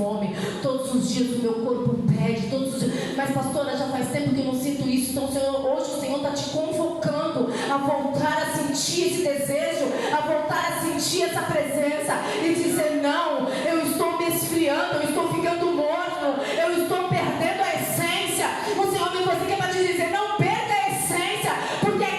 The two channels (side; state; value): both; identical; correlation 1.00